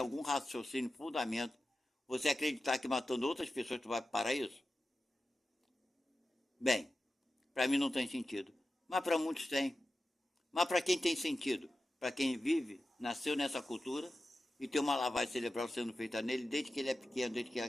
raciocínio, fundamento, você acreditar que matando outras pessoas tu vai para o paraíso? Bem, para mim não tem sentido, mas para muitos tem. Mas para quem tem sentido? Para quem vive, nasceu nessa cultura e tem uma lavagem cerebral sendo feita nele desde que ele é pequeno, desde que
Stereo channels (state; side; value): normal; both; correlation 0.93